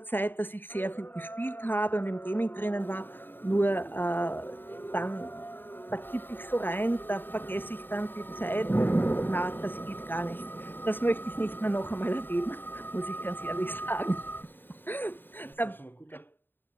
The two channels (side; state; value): right; late; 0.094 ms